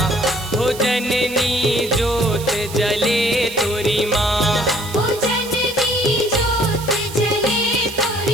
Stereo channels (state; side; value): noise; right; hiss, 13 dB below the sound